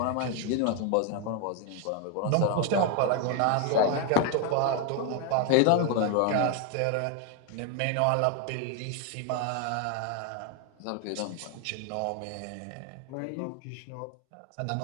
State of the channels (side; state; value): both; different; correlation 0.01